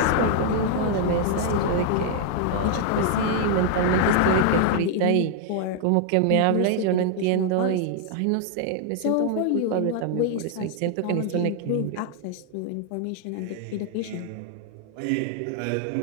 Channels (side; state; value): both; different; correlation 0.00